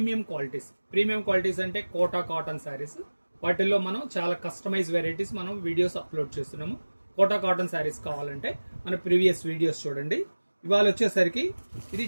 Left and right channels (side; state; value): both; inverted; correlation -1.00